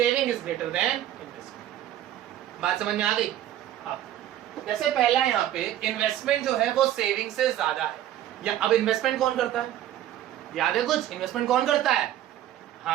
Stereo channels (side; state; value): left; quieter; 12.3 dB